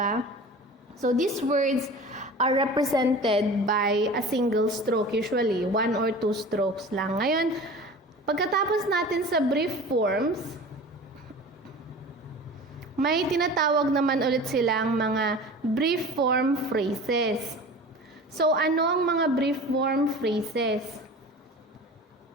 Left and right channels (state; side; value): normal; both; correlation 0.38